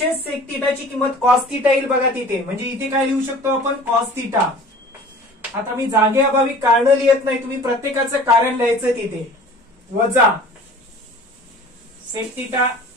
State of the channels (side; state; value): both; normal; correlation 0.45